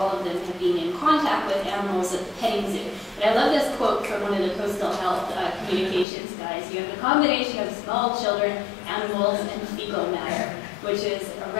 of them had been in contact with animals at the petting zoo. But I love this quote from one of the coastal health communications guys. You have a combination of small children, animals, and fecal matter, which is a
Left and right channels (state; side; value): drops out; right; at 6.1 s